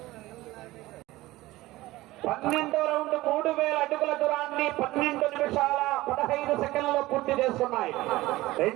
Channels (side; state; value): left; quieter; 18.2 dB